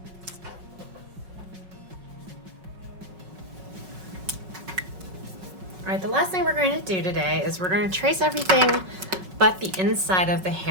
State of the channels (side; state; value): left; late; 5.4 ms